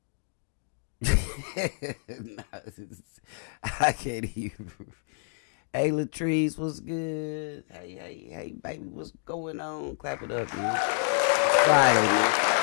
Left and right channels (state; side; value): silent; right; digital silence